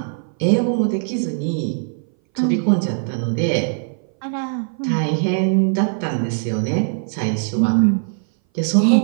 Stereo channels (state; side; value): silent; left; 60 dB below the other